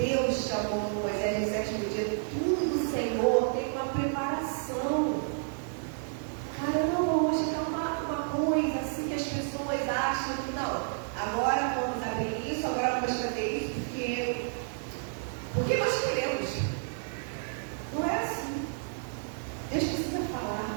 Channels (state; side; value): silent; left; digital silence